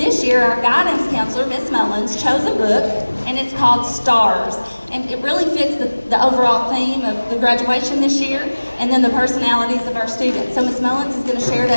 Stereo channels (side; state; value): both; inverted; correlation -1.00